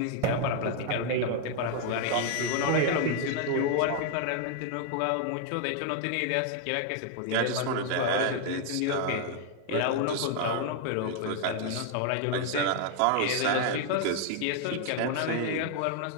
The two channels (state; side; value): different; both; correlation 0.00